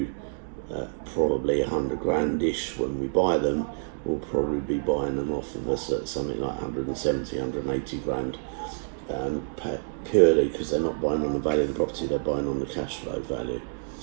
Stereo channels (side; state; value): left; silent; digital silence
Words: probably 100 grand-ish when we buy them. We'll probably be buying them off of us at something like 170, 180 grand, purely because they're not buying on the value of the property, they're buying on the cash flow value.